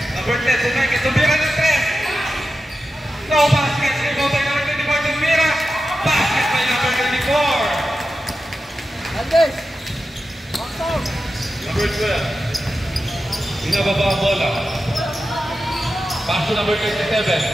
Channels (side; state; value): both; normal; correlation 0.91